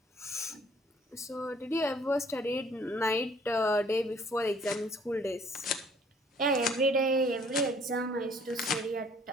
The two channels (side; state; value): both; normal; correlation 0.58